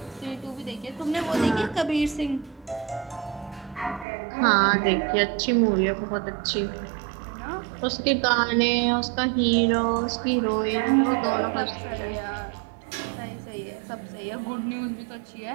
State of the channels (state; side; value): drops out; left; at 4.0 s